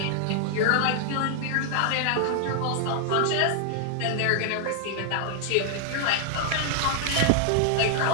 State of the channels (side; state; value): both; different; correlation 0.00